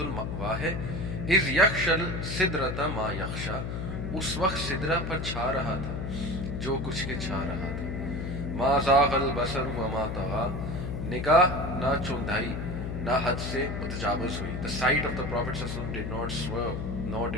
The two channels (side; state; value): left; noise; hum, 4 dB below the sound